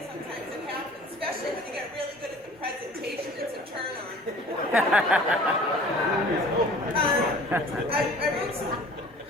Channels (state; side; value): normal; both; correlation 0.47